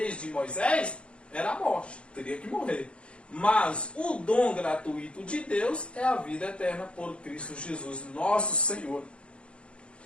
de Moisés, era a morte. Teria que morrer. Mas o dom gratuito de Deus é a vida eterna por Cristo Jesus, nosso Senhor.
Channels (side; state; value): right; late; 0.058 ms